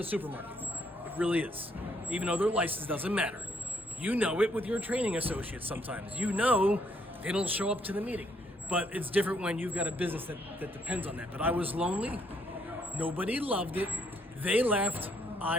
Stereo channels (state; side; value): normal; both; correlation 0.70